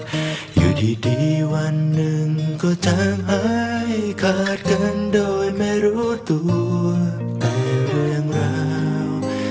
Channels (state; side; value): identical; both; correlation 1.00